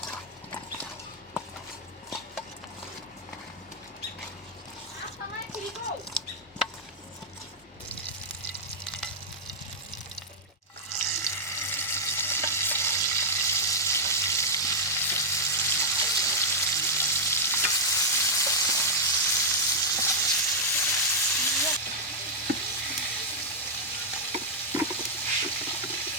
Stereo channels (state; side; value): normal; both; correlation -0.06